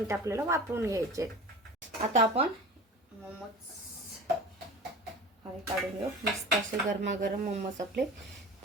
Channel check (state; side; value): normal; both; correlation 0.36